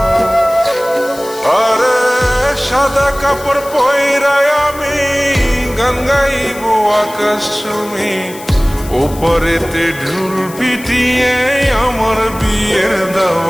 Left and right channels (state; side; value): noise; left; hiss, 17 dB below the sound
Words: আরে সাদা কাপড় পয়রায় আমি গান গাইব আকাশ চুমি, ওপরেতে ঢুল পিটিয়ে আমার বিয়ের